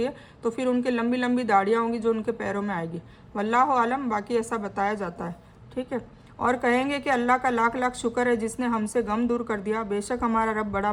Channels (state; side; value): identical; both; correlation 1.00